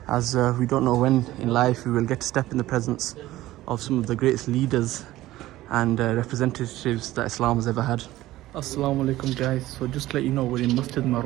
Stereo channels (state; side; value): quieter; left; 16.1 dB